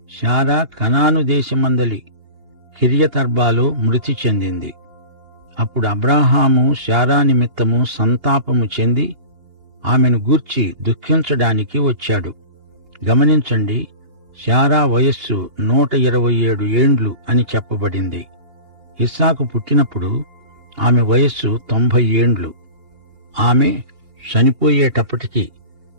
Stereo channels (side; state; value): left; late; 2.8 ms